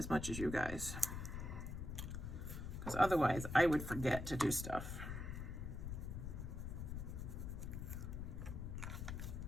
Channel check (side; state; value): left; noise; rumble, 5 dB below the sound